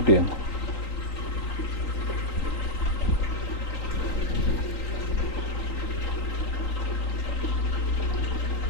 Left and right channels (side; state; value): right; late; 3.9 ms